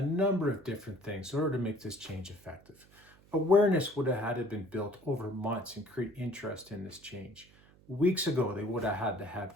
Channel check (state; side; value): noise; right; hum, 27 dB below the sound